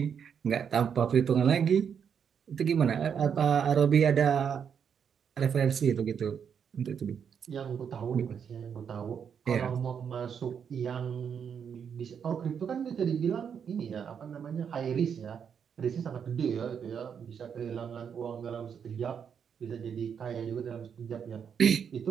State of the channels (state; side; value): quieter; left; 7.4 dB